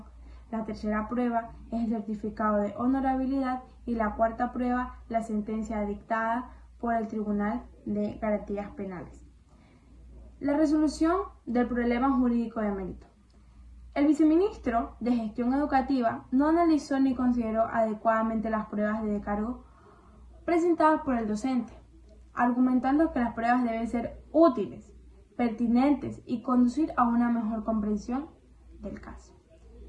La tercera prueba es el certificado de honorabilidad y la cuarta prueba, la sentencia dictada por el Tribunal de Garantías Penales. La resolución del problema jurídico de mérito. El viceministro de Gestión Educativa no analizó ni consideró adecuadamente las pruebas de descargo presentadas por el docente, argumentando que las pruebas deben ser útiles, pertinentes y conducir a una mejor comprensión del caso.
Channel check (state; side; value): identical; both; correlation 1.00